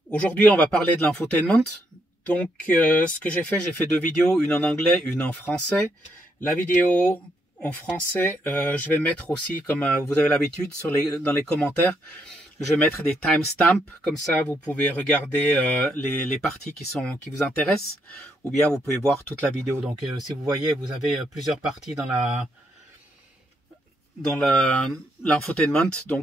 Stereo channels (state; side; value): normal; both; correlation 0.76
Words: Aujourd'hui, on va parler de l'infotainment. Donc, ce que j'ai fait deux vidéos, une en anglais, une en français. La vidéo en français, je vais mettre aussi, comme vous avez l'habitude, dans les commentaires, je vais mettre des timestamps. Comme ça, vous pouvez regarder les parties qui vous intéressent, ou bien vous pouvez voir toute la vidéo. Donc, si vous voyez, vous avez plusieurs parties dans l'infotainment.